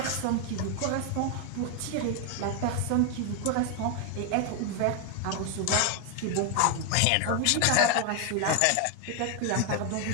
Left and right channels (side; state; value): both; different; correlation 0.01